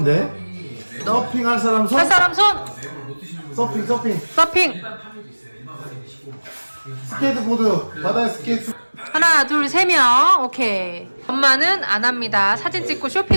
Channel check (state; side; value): inverted; both; correlation -1.00